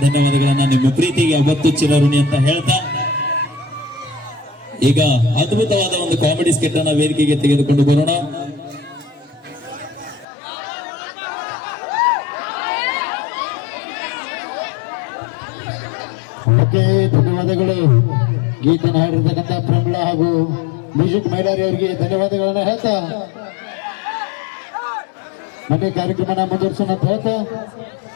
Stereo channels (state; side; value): drops out; right; at 10.2 s